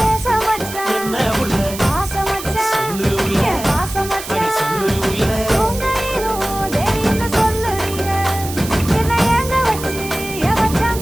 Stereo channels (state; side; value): noise; right; hiss, 11 dB below the sound